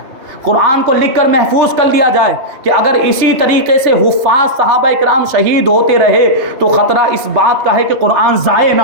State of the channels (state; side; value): late; left; 3.2 ms